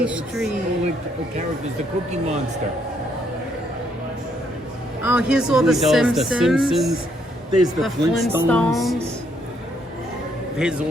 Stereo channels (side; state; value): both; normal; correlation 0.72